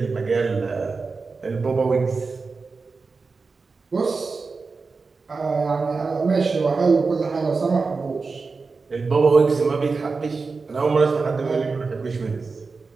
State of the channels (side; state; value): left; quieter; 4.4 dB